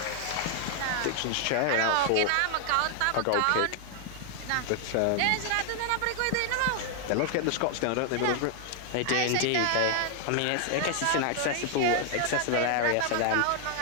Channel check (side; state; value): both; different; correlation 0.00